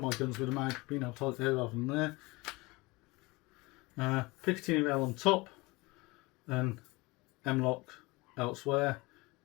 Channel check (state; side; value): quieter; right; 23.5 dB